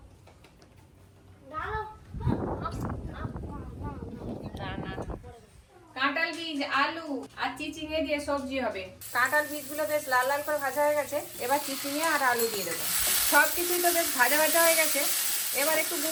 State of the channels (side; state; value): both; identical; correlation 1.00